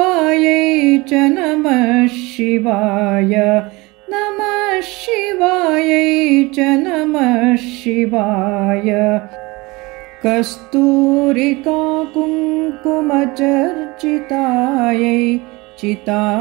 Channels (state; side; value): quieter; left; 23.6 dB